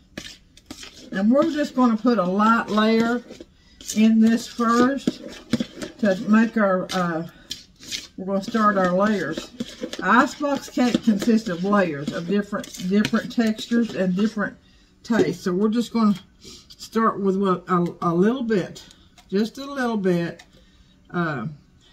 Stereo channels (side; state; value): both; identical; correlation 1.00